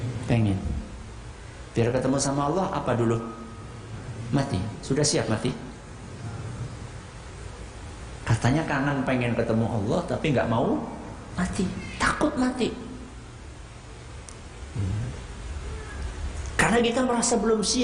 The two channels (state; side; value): identical; both; correlation 1.00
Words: Pengen. Biar ketemu sama Allah apa dulu? Mati. Sudah siap mati? Katanya kangen pengen ketemu Allah tapi nggak mau mati, takut mati. Karena kita merasa belum